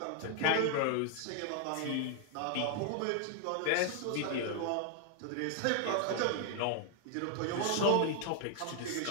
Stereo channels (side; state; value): both; different; correlation 0.00